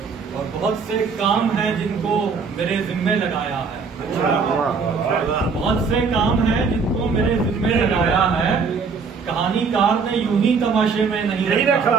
اور بہت سے کام ہیں جن کو میرے ذمے لگایا ہے، بہت سے کام ہیں جن کو میرے ذمے لگایا ہے، کہانی کار نے یوں ہی تماشے میں نہیں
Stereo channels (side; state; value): left; quieter; 5.2 dB